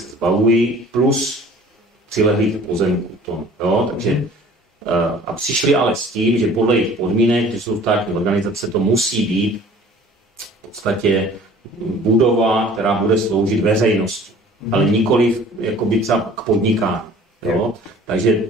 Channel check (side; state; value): both; normal; correlation 0.49